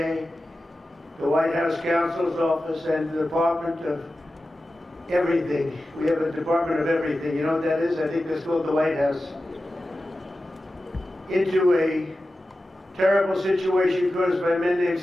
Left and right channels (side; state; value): both; normal; correlation 0.93